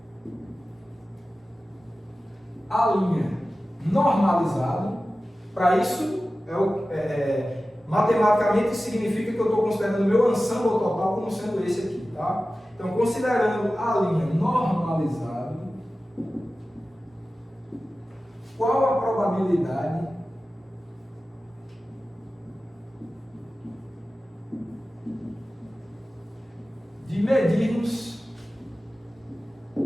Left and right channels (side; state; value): both; normal; correlation 0.95